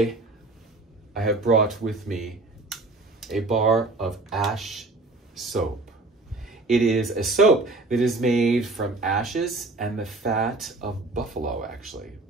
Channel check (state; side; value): quieter; left; 3.2 dB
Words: I have brought with me a bar of ash soap. It is a soap that is made from ashes and the fat of buffalo,